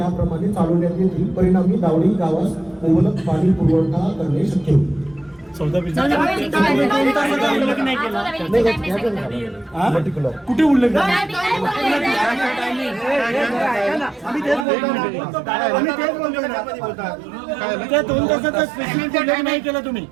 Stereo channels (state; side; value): drops out; left; at 14.7 s